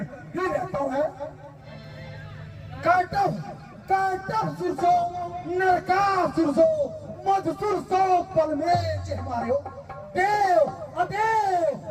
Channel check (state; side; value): identical; both; correlation 1.00